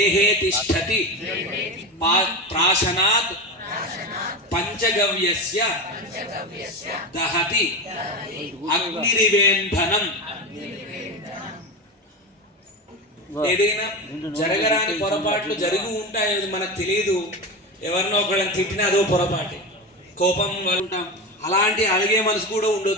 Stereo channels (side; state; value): both; normal; correlation 0.21